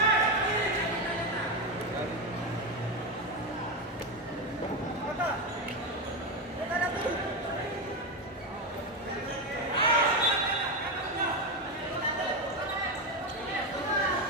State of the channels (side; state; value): both; normal; correlation 0.11